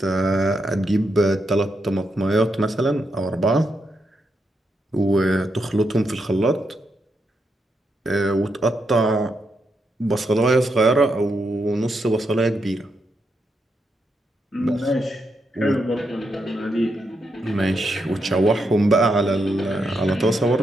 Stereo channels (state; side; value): normal; both; correlation 0.82